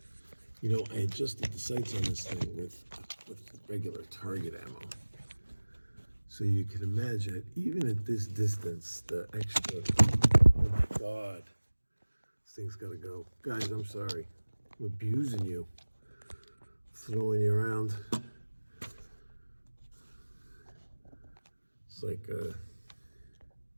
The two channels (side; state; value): both; inverted; correlation -1.00